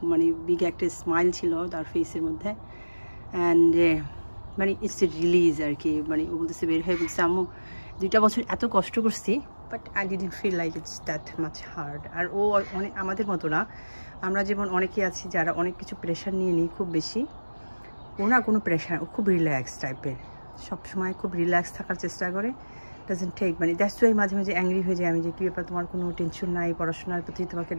মানে বিগ একটা স্মাইল ছিল তার ফেসের মধ্যে। অ্যান্ড মানে ইটস এ রিলিজ আর কি। মানে ও বলতেছে, বের হয়ে বলছে, আম্মু 2টা বছর এত কষ্ট করছি, but I didn't feel like it's that much hard. আর ও অনেক আমাদের মতো না। আমরা যেমন অনেকে আছি যারা অনেক কিছু প্রেশার নিয়ে নিই খুব বেশি, ও না কোনো প্রেশার, ও খুব রিল্যাক্স টাইপের, সবসময় খুব রিল্যাক্স থাকার চেষ্টা করে। ডাজেন্ট টেক মানে দ্যাটস ওয়াই মাঝে মাঝে অ্যাংরি হয়ে যায় আমি, যে কী ব্যাপার তোমার কোনো টেনশন নাই পড়াশোনার প্রতি, তোমাকে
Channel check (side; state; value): both; inverted; correlation -1.00